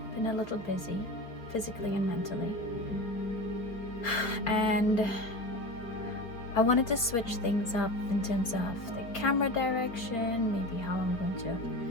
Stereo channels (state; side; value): late; right; 4.3 ms